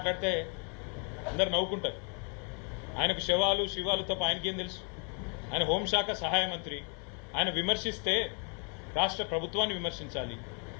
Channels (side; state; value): right; quieter; 37.4 dB